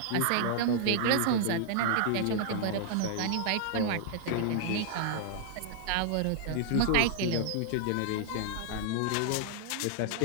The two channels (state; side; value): different; both; correlation -0.01